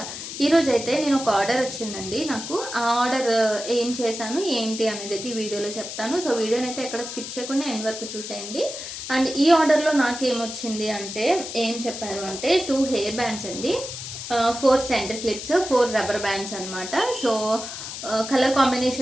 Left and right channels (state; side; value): noise; left; hiss, 8 dB below the sound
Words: ఈరోజు అయితే నేను ఒక ఆర్డర్ వచ్చిందండి. నాకు ఆ ఆర్డర్ ఏం చేశాను ఏంటి అనేది అయితే ఈ వీడియోలో చెప్తాను. సో వీడియోని అయితే ఎక్కడ స్కిప్ చేయకుండా ఎండ్ వరకు చూసేయండి. అండ్ ఈ ఆర్డర్లో నాకేమొచ్చింది అంటే ఏం చెప్పారు అంటే 2 హెయిర్ బ్యాండ్స్ అండి, 4 సెంటర్ క్లిప్స్, 4 రబ్బర్ బ్యాండ్స్ అనమాట. సో కలర్